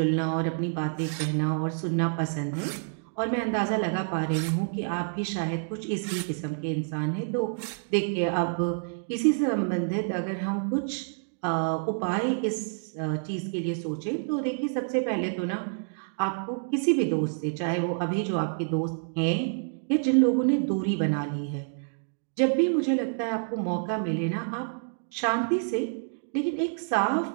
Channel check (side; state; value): left; silent; digital silence